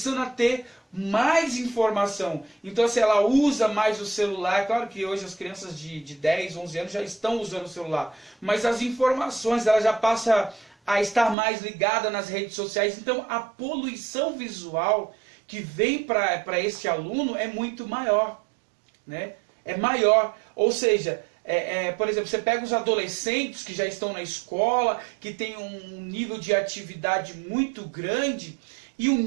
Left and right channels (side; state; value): left; drops out; at 11.4 s